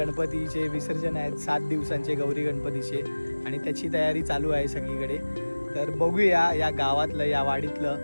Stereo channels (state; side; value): inverted; both; correlation -1.00